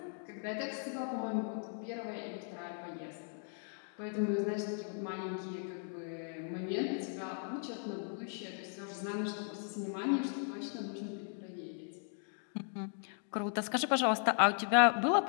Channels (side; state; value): right; silent; 53 dB below the other